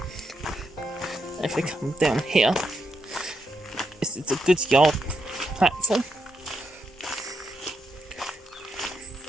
If we come down here, this is the goods yard platform.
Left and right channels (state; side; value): normal; both; correlation 0.82